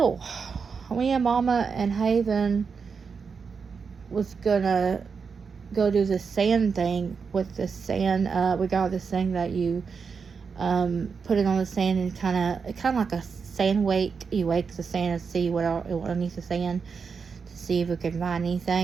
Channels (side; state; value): left; quieter; 5.6 dB